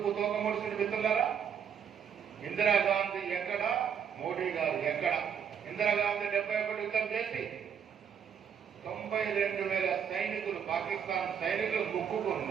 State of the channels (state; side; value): quieter; left; 7.6 dB